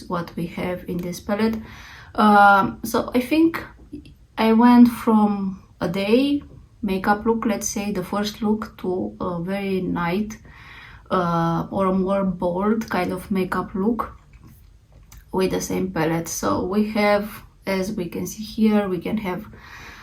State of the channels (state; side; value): identical; both; correlation 1.00